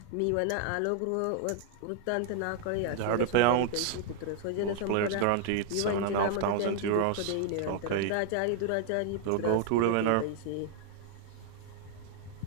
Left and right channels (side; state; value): both; different; correlation 0.00